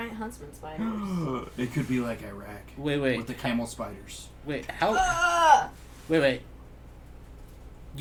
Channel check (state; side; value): identical; both; correlation 1.00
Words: huntsman spiders? It could be like Iraq. Wait. With the camel spiders. Wait, how? Ah! Wait.